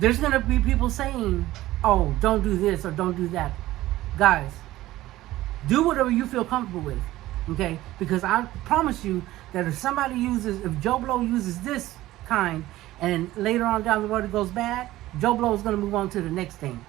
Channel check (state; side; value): quieter; left; 16.1 dB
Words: going to be people saying, oh, don't do this or don't do that. Guys, do whatever you feel comfortable with, okay? Because I promise you that if Joe Blow uses this kind and later on down the road it goes bad, Joe Blow is going to move on to the next thing.